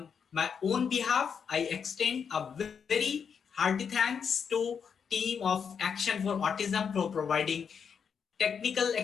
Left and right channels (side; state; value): right; quieter; 6.7 dB